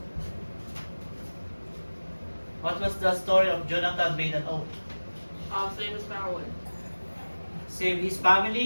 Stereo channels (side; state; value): both; inverted; correlation -1.00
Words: What was the story of Jonathan made an oath? Same as Farrell. Save his